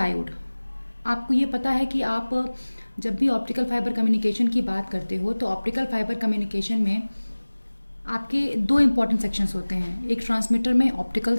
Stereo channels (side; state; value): both; inverted; correlation -1.00